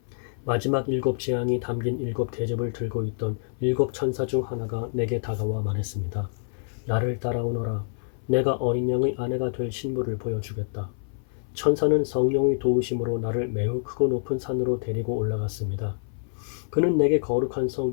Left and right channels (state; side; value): silent; right; 58 dB below the other